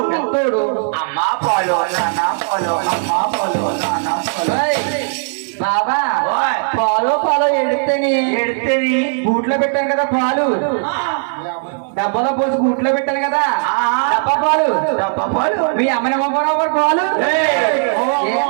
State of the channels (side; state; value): left; silent; 62 dB below the other